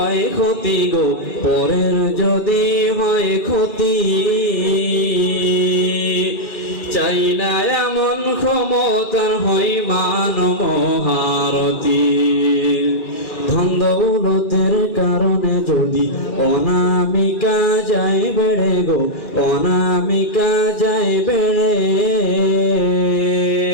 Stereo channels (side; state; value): right; late; 2.2 ms